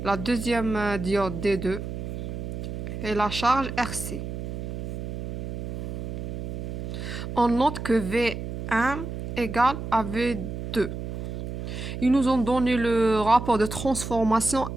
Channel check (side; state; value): right; noise; hum, 6 dB below the sound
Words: la deuxième diode D2 et la charge RC. On note que V1 égale à V2. Ils nous ont donné le rapport de transformation